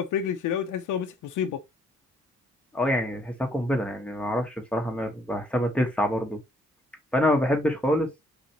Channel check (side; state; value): both; normal; correlation 0.66